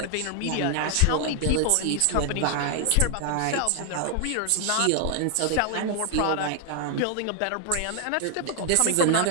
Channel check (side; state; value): both; different; correlation 0.00